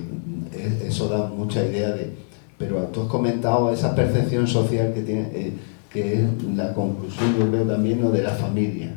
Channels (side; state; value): right; silent; 62 dB below the other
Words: Eso da mucha idea de... Pero tú has comentado esa percepción social que tiene, que es la conclusión, yo creo también, ¿no? De la familia.